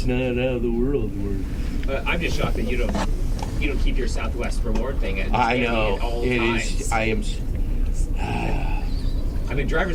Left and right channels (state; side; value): identical; both; correlation 1.00